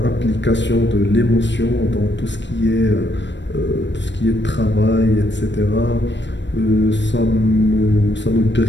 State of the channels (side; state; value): right; late; 0.53 ms